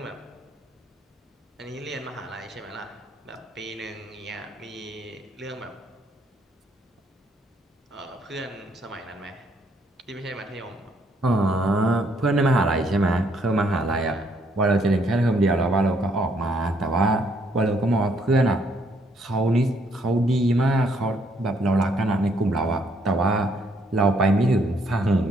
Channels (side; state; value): both; normal; correlation 0.69